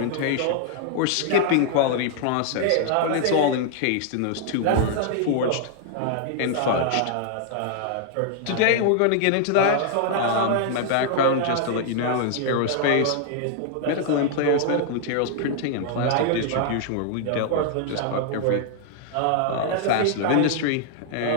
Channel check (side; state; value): both; different; correlation 0.00